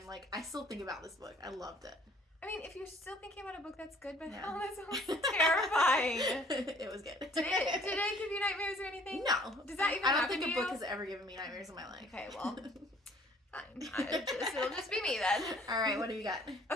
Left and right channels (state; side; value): normal; both; correlation 0.57